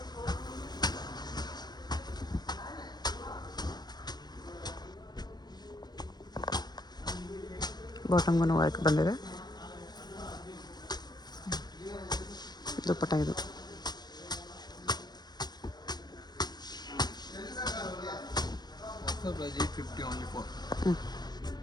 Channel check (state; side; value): late; right; 0.20 ms